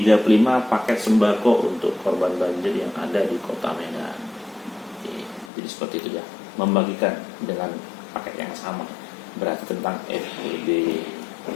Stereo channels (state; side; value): drops out; right; at 5.5 s